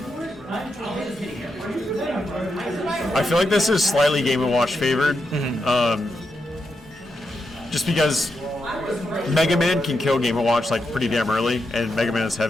I feel like this is slightly Game & Watch favored. Just because Mega Man can kill Game & Watch like pretty damn early, and Mega Man is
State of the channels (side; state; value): both; normal; correlation 0.85